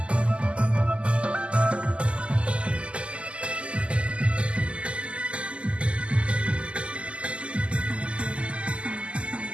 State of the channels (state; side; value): late; left; 0.055 ms